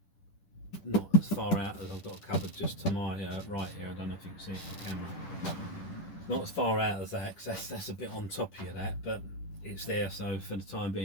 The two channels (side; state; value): right; late; 10 ms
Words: not as far out as I've got a cupboard just to my right here. I don't know if you can see it on camera. Not as far out as that, because that's a bit on top of that, but it's there, so for the time